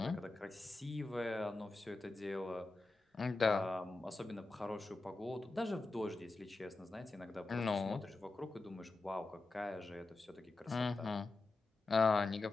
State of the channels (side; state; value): right; quieter; 3.3 dB